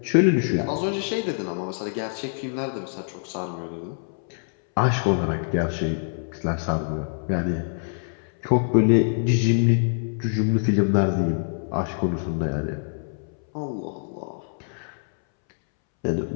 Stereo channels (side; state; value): right; silent; 62 dB below the other